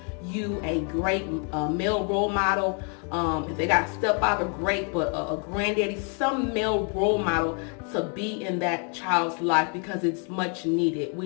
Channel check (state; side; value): quieter; right; 39.3 dB